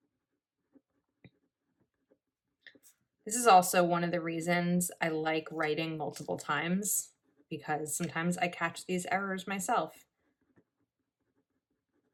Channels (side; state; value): both; identical; correlation 1.00